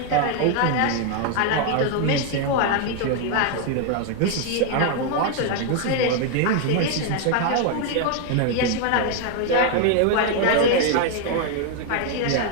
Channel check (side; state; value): both; different; correlation 0.00